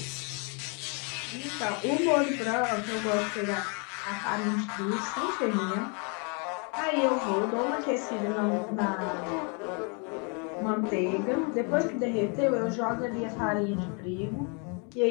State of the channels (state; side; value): quieter; right; 35.9 dB